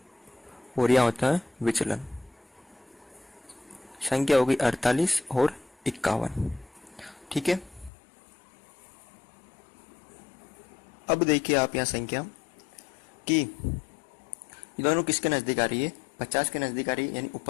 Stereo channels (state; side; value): drops out; right; at 7.9 s